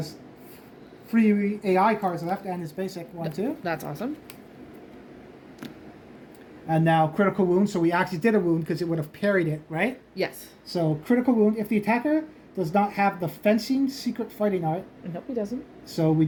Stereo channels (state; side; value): identical; both; correlation 1.00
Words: 3 AI cards left and his basic 1 too. That's awesome. And now critical wound. So we actually did a wound because it would have parried it, right? Yes. So critical wound. If the attacker does not have the fencing secret fighting art. Nope, he doesn't. So we